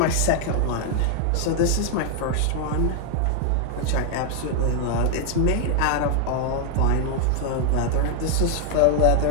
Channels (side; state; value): both; different; correlation 0.00